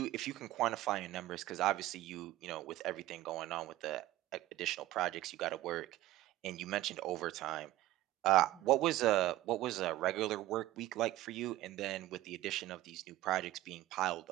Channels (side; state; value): left; quieter; 15.7 dB